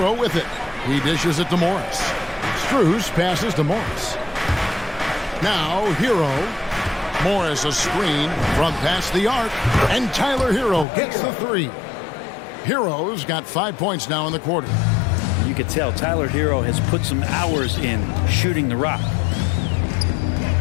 with it. He dishes it to Morris. Strus passes to Morris. Now Hero. Morris a screen from past the arc. And Tyler Hero gets the 3. Hero's got 5 points now in the quarter. You could tell Tyler Hero has put some hours in shooting the rock.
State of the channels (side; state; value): right; drops out; at 10.9 s